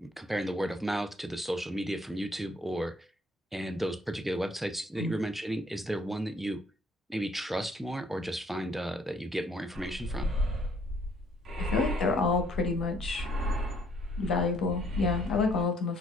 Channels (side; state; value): both; normal; correlation 0.64